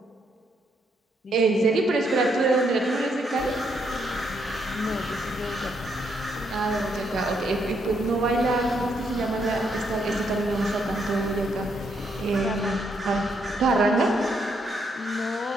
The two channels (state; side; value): normal; both; correlation 0.75